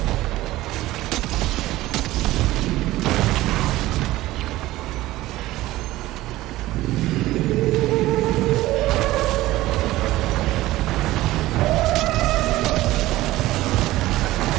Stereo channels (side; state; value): left; quieter; 16.9 dB